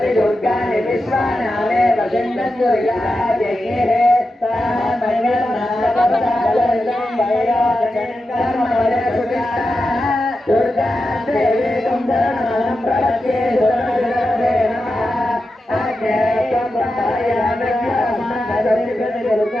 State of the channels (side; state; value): both; normal; correlation 0.90